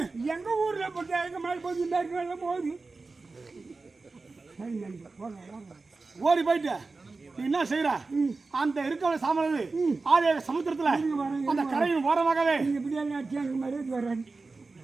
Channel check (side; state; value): left; quieter; 3.8 dB